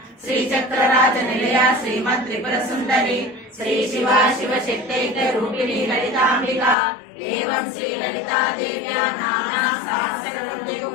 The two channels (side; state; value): right; drops out; at 6.8 s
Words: श्रीचक्रराजनिलया श्रीमत्त्रिपुरसुन्दरी श्री शिवा शिवशक्तैक रूपिणी ललितांबिका एवं श्री ललिता देव्या नाम्ना